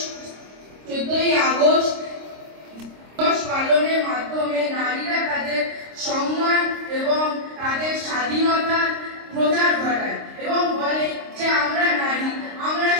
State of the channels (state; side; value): late; left; 26 ms